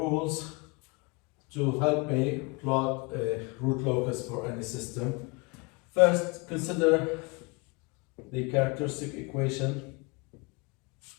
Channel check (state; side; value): quieter; right; 28.9 dB